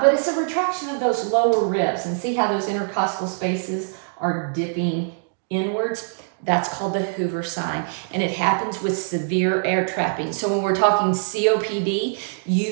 but it's a retraction of those lower ribs. And see how those intercostal spaces are dipping inwards? That's called the Hoover sign, and it happens with severe air trapping. So when we're talking COPD,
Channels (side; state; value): left; silent; digital silence